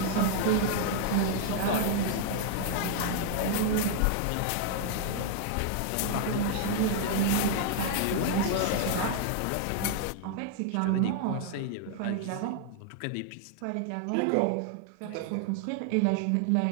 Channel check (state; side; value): different; both; correlation 0.00